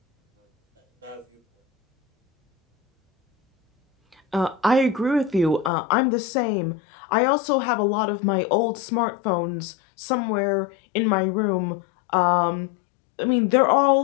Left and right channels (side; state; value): right; drops out; at 5.7 s